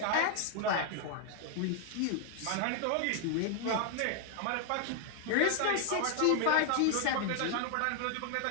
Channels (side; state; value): both; different; correlation 0.00